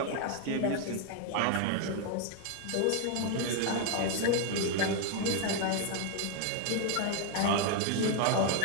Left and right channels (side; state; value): both; different; correlation 0.00